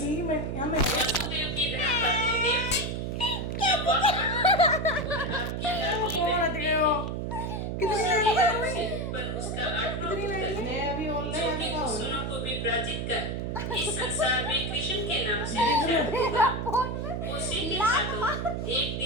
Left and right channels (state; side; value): noise; right; hum, 3 dB below the sound